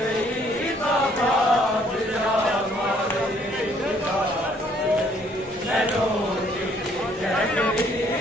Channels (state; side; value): normal; both; correlation 0.64